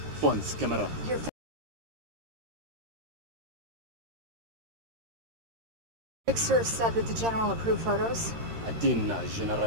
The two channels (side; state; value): left; late; 13 ms